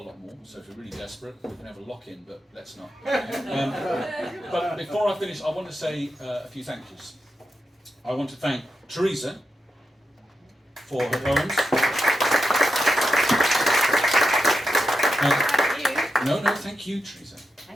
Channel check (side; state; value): both; normal; correlation 0.88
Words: more, so if you're really desperate, we can have a lock-in, but let's not. But before I finish, I want to say a few thank yous. I want to thank Teresa for her poems. No, thank you, Teresa.